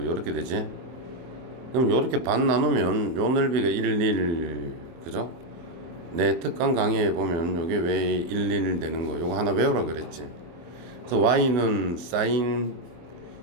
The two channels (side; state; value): left; late; 24 ms